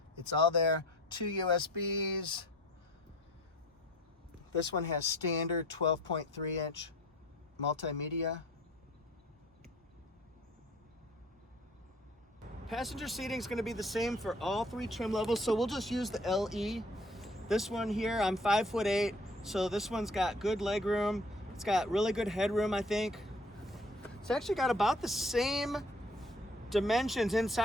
It's all there. 2 USBs. This one has standard 12.3-inch multimedia. Passenger seating is going to be the same for all 3 trim levels, so we'll just use the LE. This one here, I'm 5'8", so this one's got good leg room. It's got really good headroom, I think. It's actually got about the same dimensions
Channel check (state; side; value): normal; both; correlation 0.52